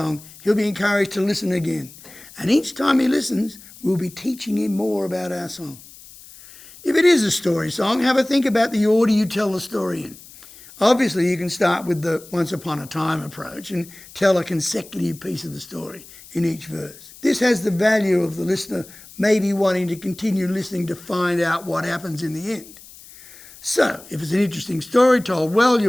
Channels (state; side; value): noise; left; hiss, 20 dB below the sound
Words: he'll be encouraged to listen again. And each time he listens, we'll be teaching him more about our song. If it is a story song, have a think about the order you tell the story in. Obviously, you can start with the once upon a time approach and tell a consecutive piece of the story in each verse. This has the value of the listener maybe wanting to continue listening to find out what happens in the end. So, if it's an interesting story told well,